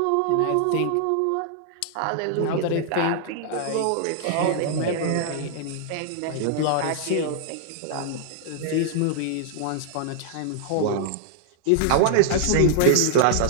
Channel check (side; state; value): both; different; correlation -0.01